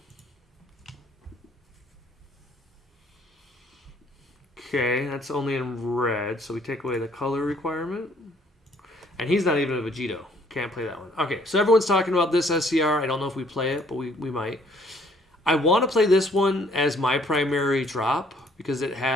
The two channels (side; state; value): both; normal; correlation 0.63